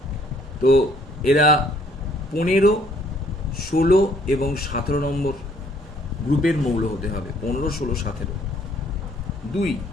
তো এরা 15, 16 এবং 17 নম্বর গ্রুপের মৌল হতে হবে। 15, 16, 17। 2,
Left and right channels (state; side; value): normal; both; correlation 0.63